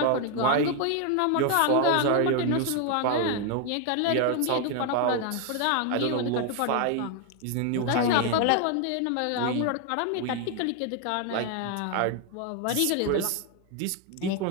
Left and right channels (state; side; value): different; both; correlation 0.01